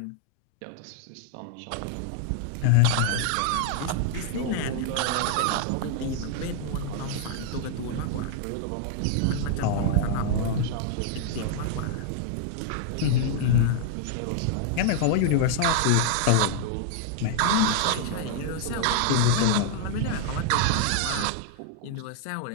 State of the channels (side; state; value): both; different; correlation 0.00